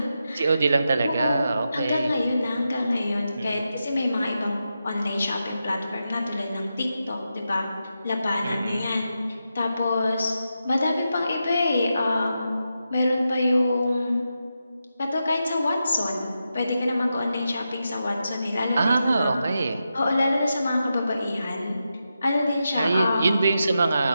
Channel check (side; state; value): both; inverted; correlation -0.88